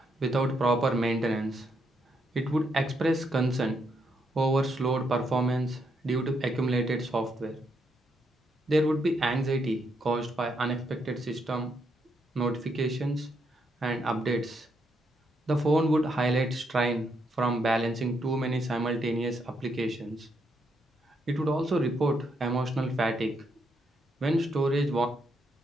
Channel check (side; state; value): both; normal; correlation 0.77